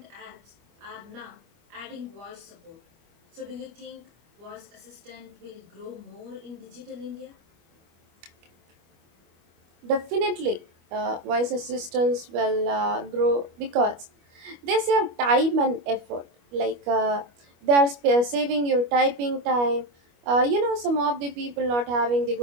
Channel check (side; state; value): left; late; 25 ms